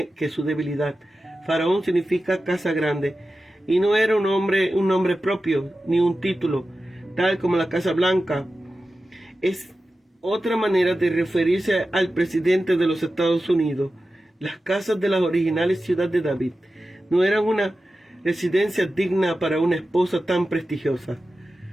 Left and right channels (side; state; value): both; normal; correlation 0.93